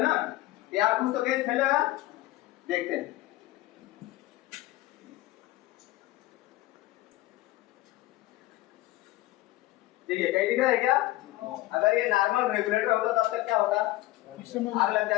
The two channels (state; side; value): quieter; right; 17.1 dB